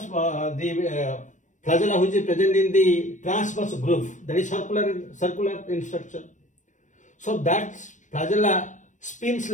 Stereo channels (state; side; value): late; right; 0.36 ms